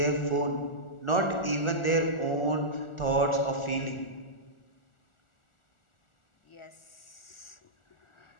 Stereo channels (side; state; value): right; late; 1.4 ms